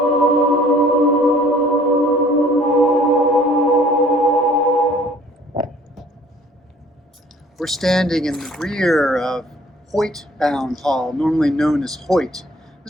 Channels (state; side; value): normal; both; correlation 0.55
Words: We're standing in the rear of Hoyt Bound Hall, normally known as Hoyt.